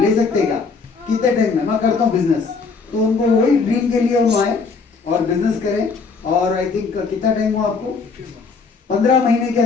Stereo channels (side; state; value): right; quieter; 4.8 dB